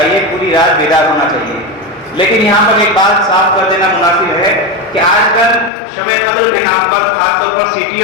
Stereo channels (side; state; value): right; drops out; at 5.7 s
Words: پوری رات بیدار ہونا چاہیے۔ لیکن یہاں پر ایک بات صاف کر دینا مناسب ہے کہ آج کل شب قدر کے نام پر خاص طور پر